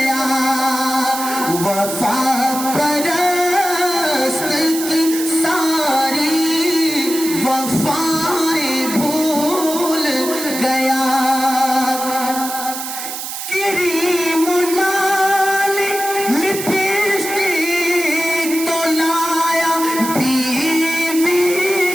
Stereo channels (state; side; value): noise; right; hiss, 7 dB below the sound